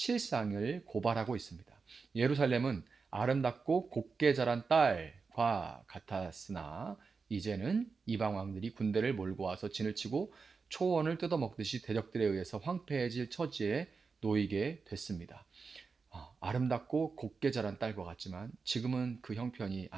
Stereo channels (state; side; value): quieter; left; 4.8 dB